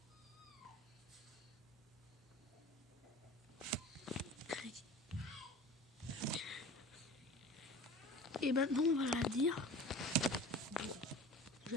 Et maintenant on va la dire. Bon. Je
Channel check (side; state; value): both; normal; correlation 0.39